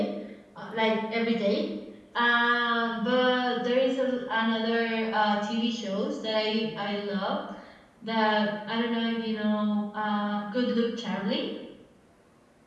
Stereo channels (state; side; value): identical; both; correlation 1.00